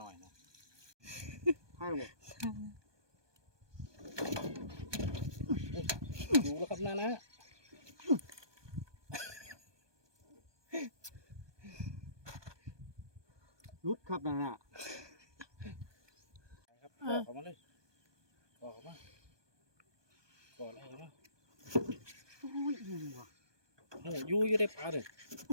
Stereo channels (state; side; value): late; left; 1.2 ms